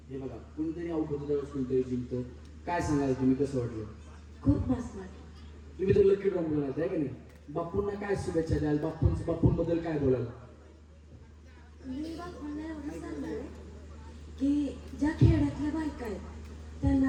हे बघा कुणीतरी आउट होतं त्यावेळेस कुणीतरी जिंकतं. काय सांगाल तुम्ही, कसं वाटलं? खूप मस्त वाटलं. तुम्ही तर लकी ड्रॉ बोलाल आहे का नाही? बापूंना काय शुभेच्छा द्याल? बापूंबद्दल काय बोलाल? मी बापूंना एवढं सांगणार आहे की ज्या खेड्यातल्या बायका आहेत त्यांना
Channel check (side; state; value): both; identical; correlation 1.00